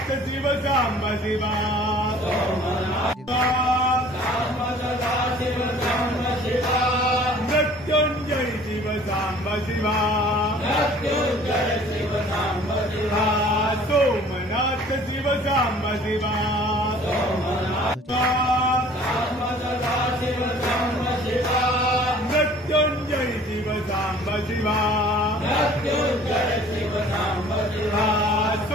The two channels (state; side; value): normal; both; correlation 0.51